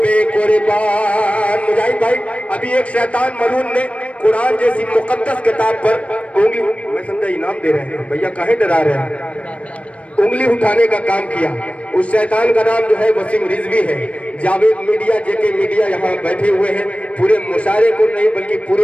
پہ قربان۔ مجاہد بھائی ابھی ایک شیطان ملعون نے قرآن جیسی مقدس کتاب پر انگلی، میں سمجھا انعام دے رہے ہیں بھیا، کاہے ڈرا رہے ہیں، انگلی اٹھانے کا کام کیا۔ اس شیطان کا نام جو ہے وسیم رضوی ہے۔ جاوید میڈیا، جے کے میڈیا یہاں بیٹھے ہوئے ہیں، پورے مشاعرے کو نہیں بلکہ پورے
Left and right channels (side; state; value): right; late; 0.063 ms